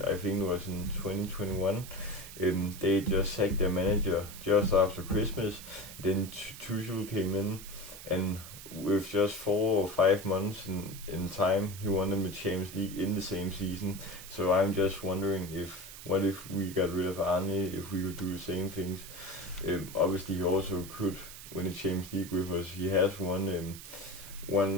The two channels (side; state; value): right; noise; hiss, 14 dB below the sound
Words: I think it was in 2021, they just sacked their manager just after Christmas. Then Tuchel came in, and with just 4 or 5 months in time, he won them the Champions League in the same season. So I'm just wondering, what if we got rid of Arne, if we could do the same things. Obviously he also could win the Champions League with us. He has won